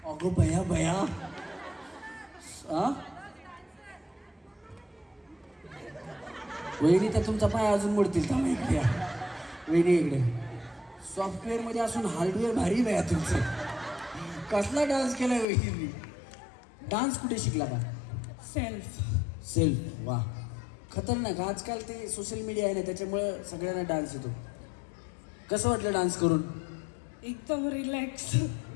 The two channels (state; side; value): drops out; right; at 15.5 s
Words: अगो भया भया. वहिनी तर तुमचा पाय अजून मोडतील. थांबा इकडे या. वहिनी इकडे. सॉफ्टवेअरमध्ये असून हार्डवेअर भारी भया तुमचं. कसला डान्स केलाय वहिनी? डान्स कुठे शिकला का? सेल्फ. वा, खतरनाक. आजकाल ते सोशल मीडिया आहे ना, त्याच्यामुळं सगळ्यांना डान्स येतो. कसं वाटलं डान्स करून? एकदम